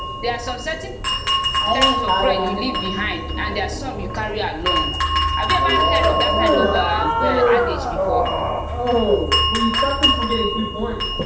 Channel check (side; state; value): both; identical; correlation 1.00